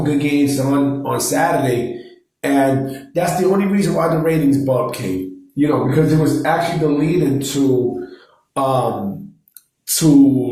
good games on Saturday, and that's the only reason why the ratings bump came. You know, because it was actually the lead-in to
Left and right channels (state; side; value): identical; both; correlation 1.00